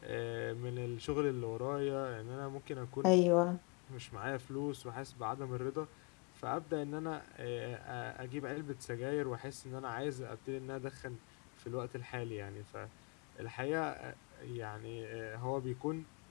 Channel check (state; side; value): quieter; right; 31.3 dB